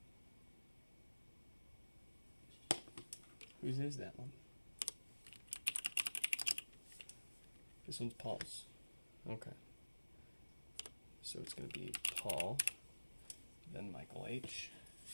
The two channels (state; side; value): inverted; both; correlation -1.00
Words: Whose is that one? This one's Paul's. Okay. So it's going to be Paul, then Michael H.